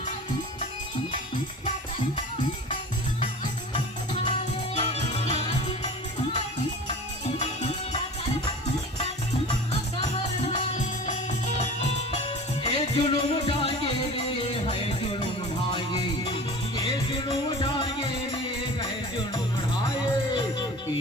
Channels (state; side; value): normal; both; correlation 0.38